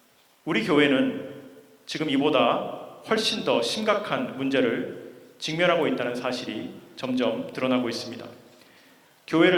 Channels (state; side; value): identical; both; correlation 1.00